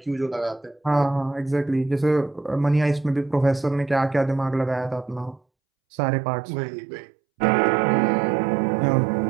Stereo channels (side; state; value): left; drops out; at 5.4 s